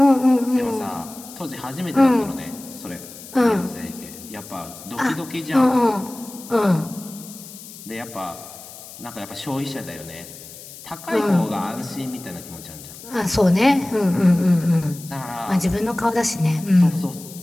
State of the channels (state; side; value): noise; left; hiss, 16 dB below the sound